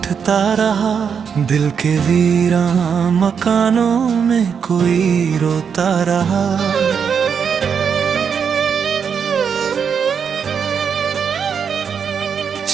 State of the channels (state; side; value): quieter; left; 6.9 dB